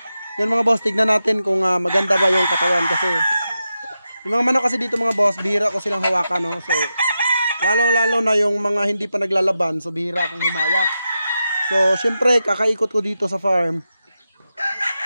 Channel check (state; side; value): inverted; both; correlation -0.89